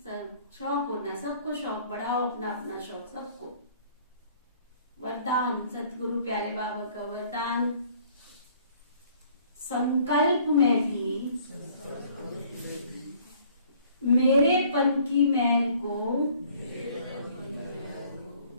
शौक होना, सबको शौक बढ़ाओ, अपना अपना शौक सबको। वरदान सतगुरु प्यारे बाबा का वरदान, संकल्प में भी मेरेपन की मैल को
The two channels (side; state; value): both; inverted; correlation -0.57